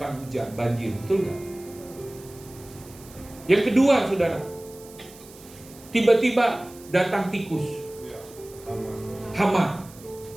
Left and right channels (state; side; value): noise; right; hiss, 21 dB below the sound